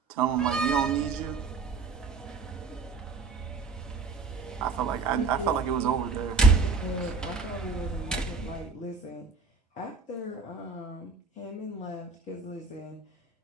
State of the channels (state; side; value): quieter; left; 4.6 dB